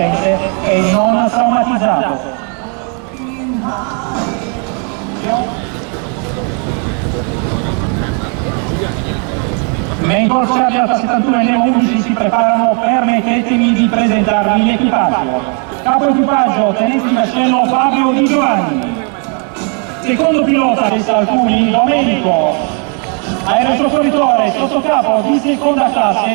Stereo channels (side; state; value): left; quieter; 38.9 dB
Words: e non traumatizzato. Mentre Corsair Alfa 71 e Nemo 11 si preparano, permettetemi di presentarvi l'equipaggio. Capo equipaggio, tenente di vascello Fabio Di Giovanni. Secondo pilota del Salcuni, Domenico. Aerosoccorritore sottocapo di seconda